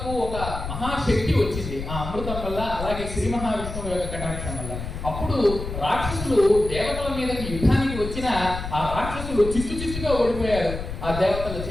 ఒక మహాశక్తి వచ్చింది ఆ అమృతం వల్ల, అలాగే శ్రీ మహావిష్ణువు యొక్క కటాక్షం వల్ల. అప్పుడు రాక్షసులు దేవతల మీదకి యుద్ధానికి వచ్చిన ఆ రాక్షసులు చిత్తుగా ఓడిపోయారు ఆ దేవతల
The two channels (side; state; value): left; noise; rumble, 7 dB below the sound